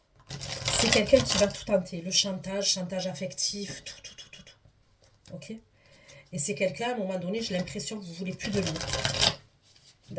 C'est quelqu'un qui va tout tenter. Le chantage, chantage affectif, tout. Ok. Et c'est quelqu'un, à un moment donné, j'ai l'impression que vous ne voulez plus de lui.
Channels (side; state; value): both; identical; correlation 1.00